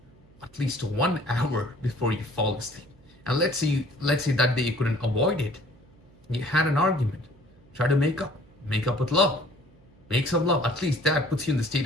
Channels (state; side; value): noise; right; hum, 28 dB below the sound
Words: at least 1 hour before you fall asleep. And let's say that day you couldn't avoid it. You had an argument. Try to make up with love. Make some love. At least that puts you in the state